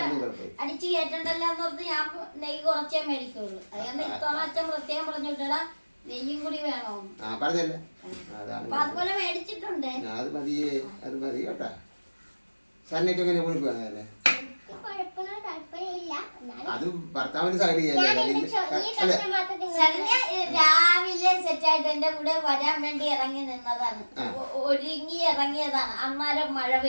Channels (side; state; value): both; inverted; correlation -1.00